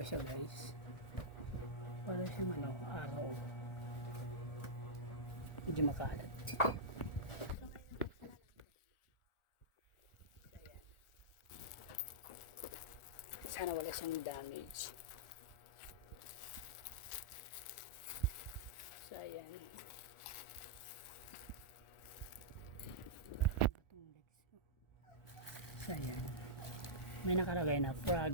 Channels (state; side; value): late; right; 1.4 ms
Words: siya guys? Para siyang araw, medyo makalat. Sana wala siyang damage. So ayan, so ayan, may nakalagay na